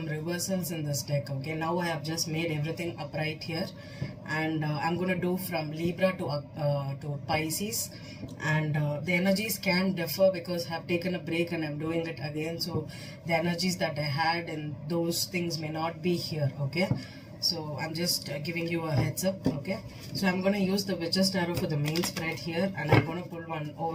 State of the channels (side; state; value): both; identical; correlation 1.00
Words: reversals in this deck. Okay, now I have just made everything upright here, and I'm gonna do from Libra to Pisces, and the energies can differ because I have taken a break and I'm doing it again. So the energies that I had and those things may not be here. Okay. So I'm just giving you a heads up. Okay, so I'm going to use the Witch's Tarot for the main spread here, and I'm going to pull one